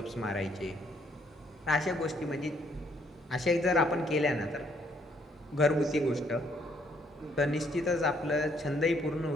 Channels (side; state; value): both; normal; correlation 0.68